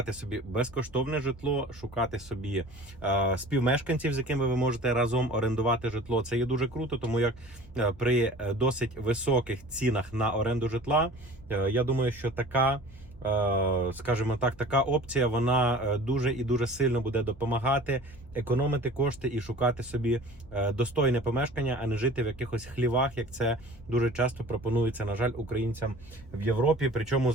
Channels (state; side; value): normal; both; correlation 0.43